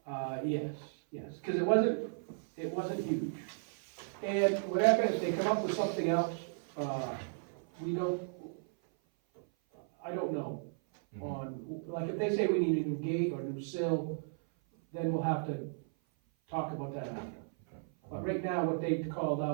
Yes, cause it wasn't huge. And whatever, if they come up with something else, I don't know. On, like, if they say we need a new gate or a new sill, then we'll have to talk about that after. But right now, what they called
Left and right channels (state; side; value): silent; left; 54 dB below the other